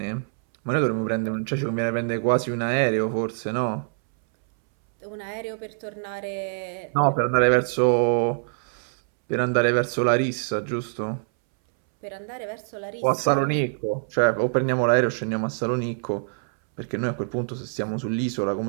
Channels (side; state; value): left; silent; 62 dB below the other